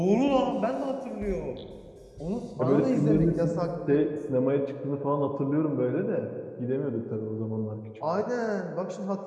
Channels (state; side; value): identical; both; correlation 1.00